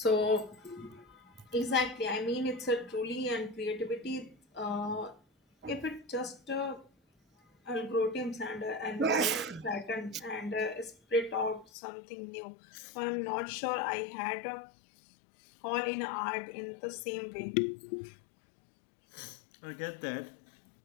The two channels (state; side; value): drops out; right; at 11.7 s